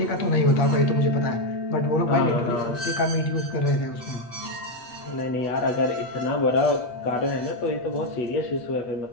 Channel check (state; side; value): late; right; 8.1 ms